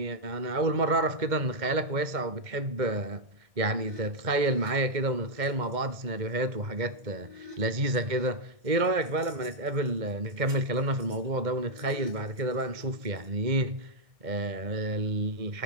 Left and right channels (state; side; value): late; left; 2.1 ms